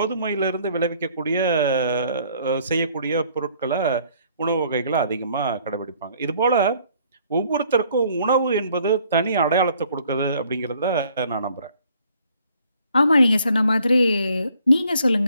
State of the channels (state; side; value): inverted; both; correlation -0.62